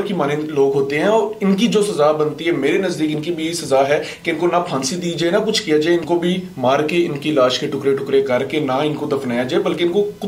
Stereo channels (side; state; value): both; identical; correlation 1.00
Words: की मानंद लोग होते हैं, और इनकी जो सजा बनती है मेरे नजदीक इनकी भी सजा है कि इनको ना फांसी दी जाए ना कुछ किया जाए, इनको भी मार के इनकी लाश के टुकड़े टुकड़े करके ना इनको दफनाया जाए बल्कि इनको